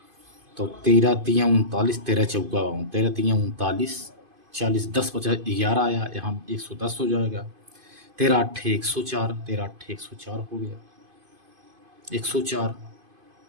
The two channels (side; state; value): left; late; 2.5 ms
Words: तो 13 तियाँ 39, 13 चौका 13 तियाँ 39, 40, 10 बचा 11 आया, यहाँ 110 हो जाएगा। 13 8 104, 13 8 104 हो गया, 104